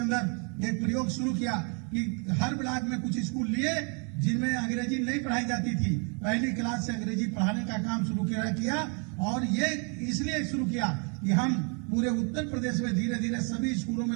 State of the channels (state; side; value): quieter; left; 37.5 dB